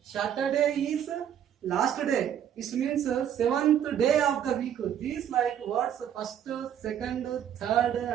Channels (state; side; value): quieter; left; 9.6 dB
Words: Saturday is last day. It means seventh day of the week. These like words first, second, third,